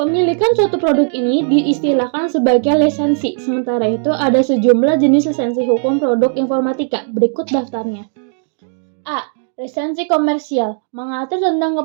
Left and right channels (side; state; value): left; silent; 61 dB below the other